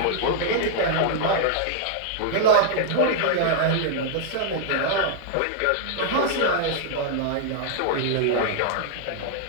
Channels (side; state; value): both; different; correlation -0.01